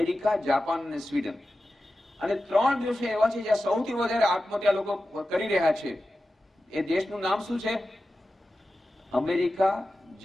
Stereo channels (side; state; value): both; normal; correlation 0.93